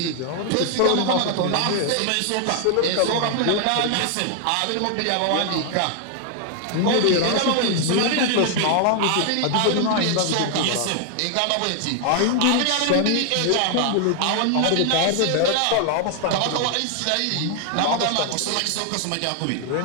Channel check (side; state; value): both; different; correlation 0.00